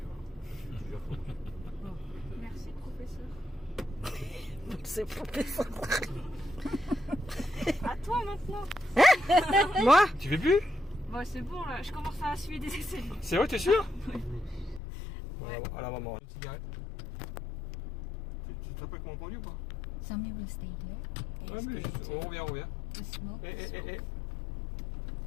voilà. Tu gères ton Merci, professeur. C'est professeur. À toi maintenant. Moi? Tu fais plus? Bon, c'est bon là, je commence à suivre des essais. C'est vrai, t'es sûr? Ouais. Voilà, à la maman. Une cigarette. Tu te rappelles comment on conduit ou pas? Sammy will stay here. Ouais, mais on revient, on revient. To smoke. Eh.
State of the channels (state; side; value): drops out; right; at 14.8 s